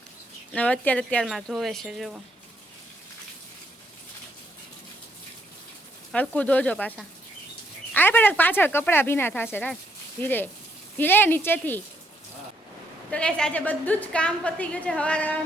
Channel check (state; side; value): normal; both; correlation 0.73